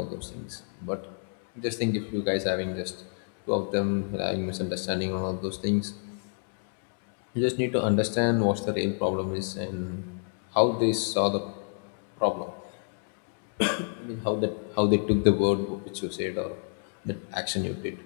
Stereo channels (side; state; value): right; silent; 58 dB below the other